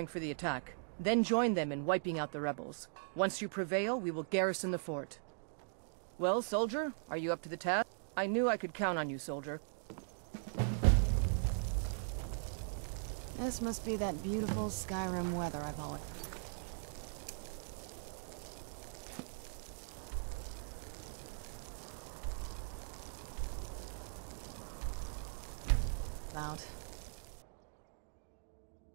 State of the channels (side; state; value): left; silent; digital silence